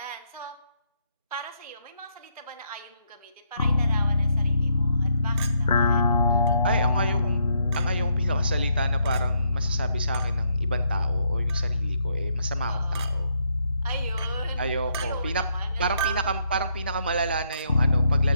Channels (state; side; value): inverted; both; correlation -0.75